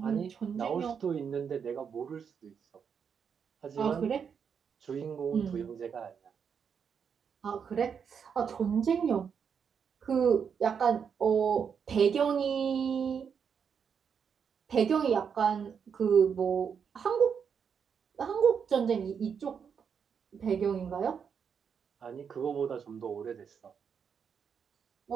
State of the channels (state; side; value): quieter; left; 6.9 dB